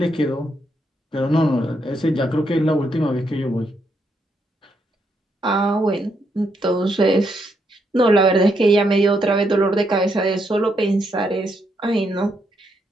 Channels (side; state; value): both; normal; correlation 0.78